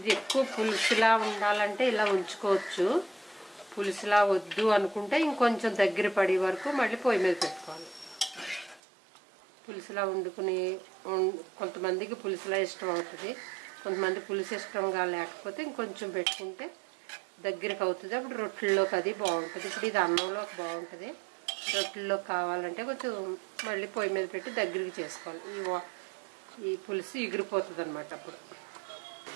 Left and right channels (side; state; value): left; drops out; at 8.8 s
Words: ఎక్కువ పులుసులా ఉండాలంటే ఇలా ఉంచుకోవచ్చు. పులుసులా వద్దు అనుకుంటే ఇంకొంచెం దగ్గర పడే వరకు మళ్ళీ పొయ్యి మీద పెట్టుకోవాలి. పులుసులా వండుకుని కొంతమందికి పులుసులా ఇష్టం అవుతుంది, కొంతమంది పులుసు ఇష్టంగా లేకపోతే ఇంకొంచెం పెట్టుకుంటే దగ్గరికి అవుతుంది. అప్పుడు రొట్టెల్లోకి అది బాగుంటుంది. ఇప్పుడు ఇది అన్నంలోకి బాగుంటుంది. రొట్టెల్లోకి కావాలంటే కొంచెం మళ్ళీ పొయ్యి మీద పెట్టి దగ్గరికి చేసుకోవాలి. ఈ పులుసు ఎగిరిపోతుంది అన్నమాట. అప్పుడు